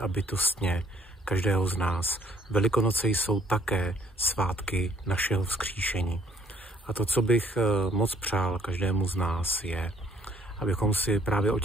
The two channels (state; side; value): normal; both; correlation 0.63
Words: bytostně každého z nás. Velikonoce jsou také svátky našeho vzkříšení. A to, co bych moc přál každému z nás, je, abychom si právě o